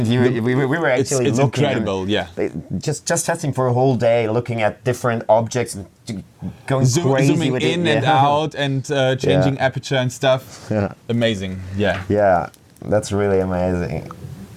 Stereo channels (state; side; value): identical; both; correlation 1.00